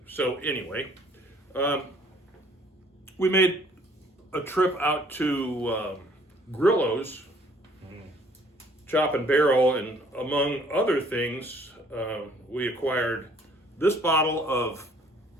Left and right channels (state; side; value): normal; both; correlation 0.59